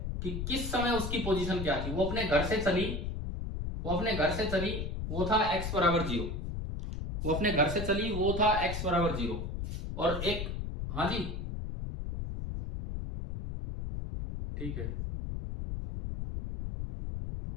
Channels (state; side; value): noise; left; rumble, 4 dB below the sound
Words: कि किस समय उसकी पोजीशन क्या थी। वो अपने घर से चली, वो अपने घर से चली, वो था x बराबर 0, वो अपने घर से चली, वो था x बराबर 0, और एक, हाँ जी ठीक है,